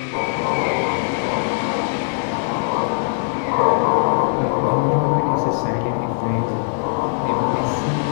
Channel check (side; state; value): right; silent; 65 dB below the other